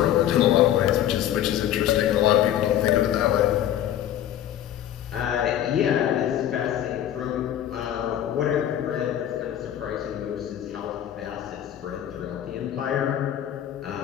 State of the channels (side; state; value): right; quieter; 11.2 dB